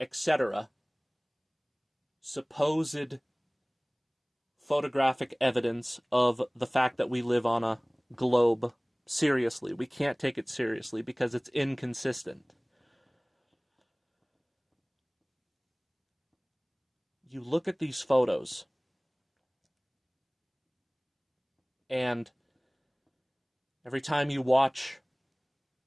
etc. supposed photographic evidence of the fact that we live on a globe seriously. We can't take it seriously because it's inconsistent. You look at these photos, and every time you watch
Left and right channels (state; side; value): identical; both; correlation 1.00